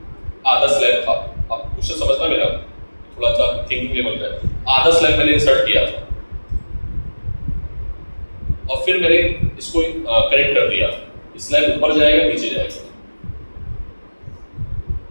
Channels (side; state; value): both; inverted; correlation -1.00